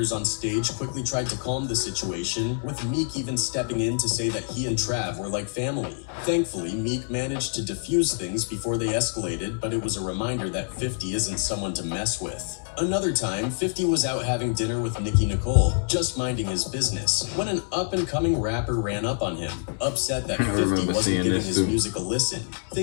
on stage quickly tried to calm the situation, with Meek even stepping in to say that he and Trav were like family. Thankfully, Meek managed to defuse things before they escalated, but it was a reminder that 50 isn't someone to mess with. Another time, 50 was out having dinner with Nicki Nicole, just minding his business, when an up-and-coming rapper ran up on him, upset that 50 wasn't giving his music a listen.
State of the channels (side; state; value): right; silent; 61 dB below the other